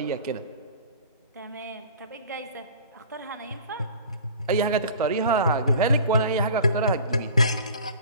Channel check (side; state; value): both; inverted; correlation -0.43